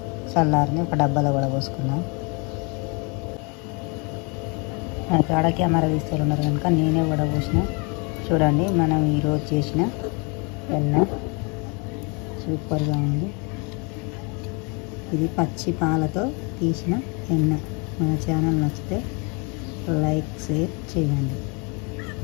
చల్లారింది. ఒక డబ్బాలో వడ పోసుకున్నాం. నాకు ఆడ కెమెరా తీస్తున్నారు కనుక నేనే వడ పోసిన. చూడండి, మనం ఈరోజు చేసిన వెన్న సూపర్గా ఉంది. ఇది పచ్చి పాలతో తీసిన వెన్న. మన ఛానల్ నచ్చితే లైక్, షేర్ చేయండి.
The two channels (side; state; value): right; quieter; 32.5 dB